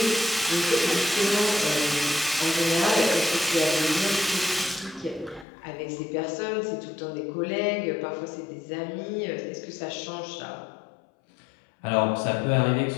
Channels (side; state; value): right; drops out; at 5.5 s